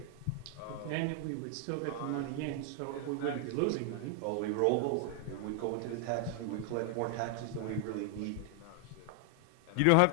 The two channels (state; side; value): different; both; correlation 0.00